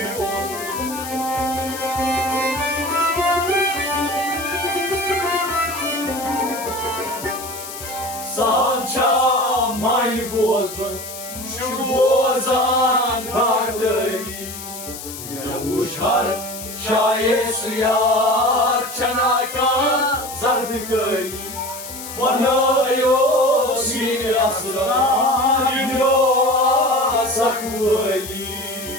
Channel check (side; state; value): left; noise; hiss, 11 dB below the sound